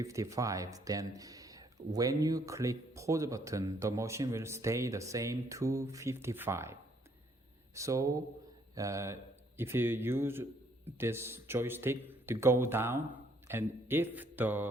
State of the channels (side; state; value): both; normal; correlation 0.67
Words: Then when you click pause button, the machine will stay the same 255. So if you use this joystick to go down, and if the